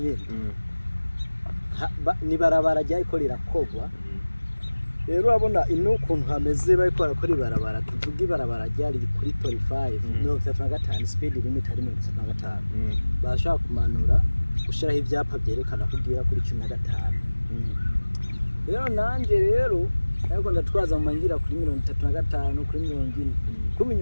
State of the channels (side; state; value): both; inverted; correlation -1.00